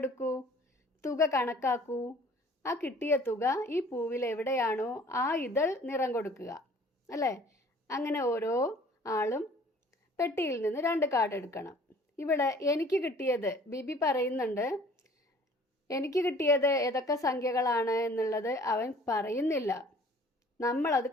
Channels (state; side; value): normal; both; correlation 0.52